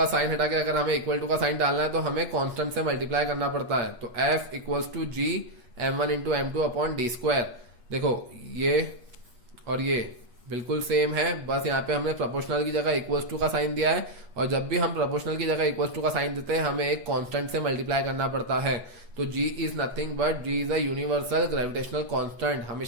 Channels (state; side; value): late; left; 8.3 ms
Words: साइन हटा के अगर हमें इक्वल टू का साइन डालना है तो हमें कांस्टेंट से मल्टीप्लाई करना पड़ता है। तो F equals to G m1 into m2 upon d square. देखो ये और ये बिल्कुल सेम है, बस यहाँ पे हमने प्रोपोर्शनल की जगह इक्वल्स टू का साइन दिया है। और जब भी हम प्रोपोर्शनल की जगह इक्वल्स टू का साइन देते हैं हमें एक कांस्टेंट से मल्टीप्लाई करना पड़ता है। तो G is nothing but G is a universal gravitational constant.